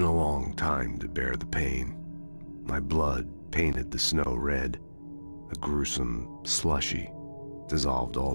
a long time to bear the pain. My blood painted the snow red. A gruesome slushy dissolved all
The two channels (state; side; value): inverted; both; correlation -1.00